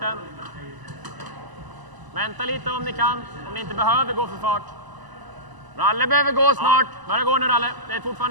Vänta lite om ni kan. Om ni inte behöver gå för fart. Ralle behöver gå snart. Börja gå nu, Ralle. Det är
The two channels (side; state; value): left; late; 1.0 ms